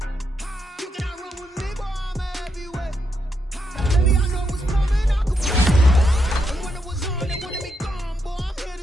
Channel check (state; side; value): normal; both; correlation 0.81